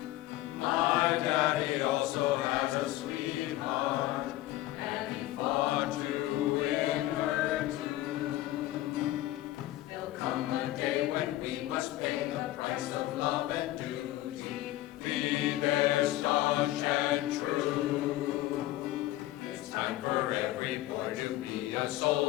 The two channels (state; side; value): quieter; right; 15.7 dB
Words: My daddy also has a sweetheart, and he fought to win her too. There'll come a day when we must pay the price of love and duty, be there staunch and true. It's time for every boy to be a